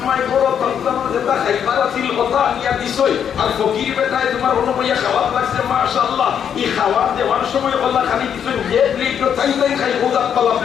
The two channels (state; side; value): quieter; right; 8.4 dB